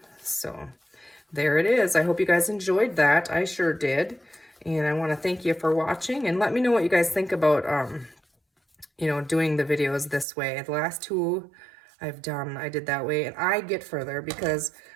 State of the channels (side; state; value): left; drops out; at 10.2 s